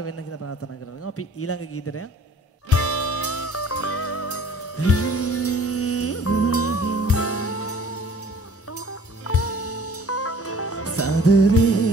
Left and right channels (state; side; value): normal; both; correlation 0.51